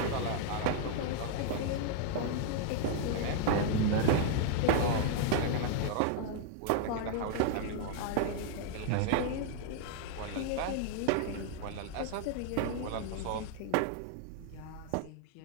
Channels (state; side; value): different; both; correlation 0.00